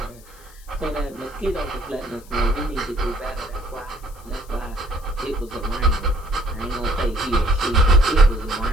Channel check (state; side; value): noise; left; hiss, 24 dB below the sound